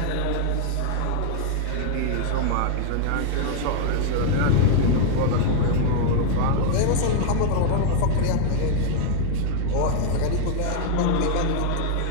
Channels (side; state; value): both; different; correlation 0.00